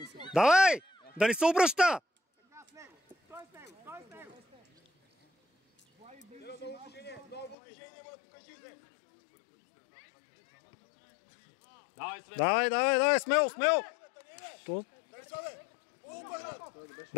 се. Давай! Да ни се обръща! Давай, Свет! Давай! Смело! То...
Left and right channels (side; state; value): right; drops out; at 7.6 s